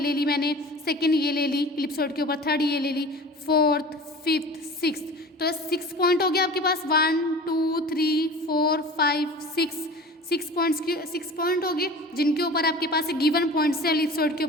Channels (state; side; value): normal; both; correlation 0.38